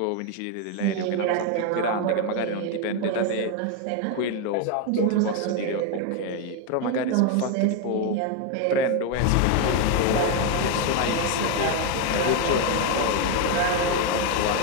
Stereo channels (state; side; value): different; both; correlation 0.02